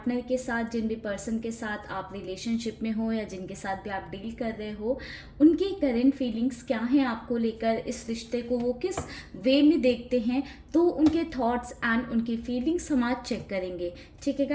के साथ, जिन भी पर्सन के साथ आप रिलेशनशिप में हो या जिनके साथ भी आप डील कर रहे हो, उनकी करंट फीलिंग्स क्या हैं आपको लेकर, इस रिश्ते को वो किस वे में देखते हैं। तो उनके थॉट्स एंड उनकी फीलिंग्स हम आज चेक करेंगे। ठीक है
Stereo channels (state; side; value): identical; both; correlation 1.00